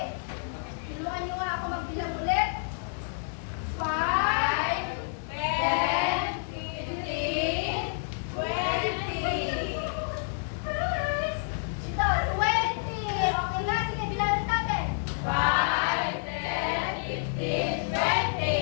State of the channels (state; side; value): silent; right; digital silence